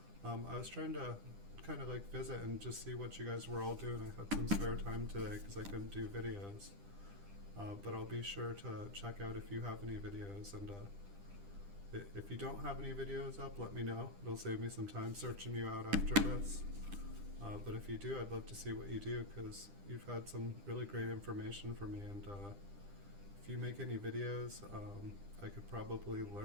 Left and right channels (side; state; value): left; late; 10 ms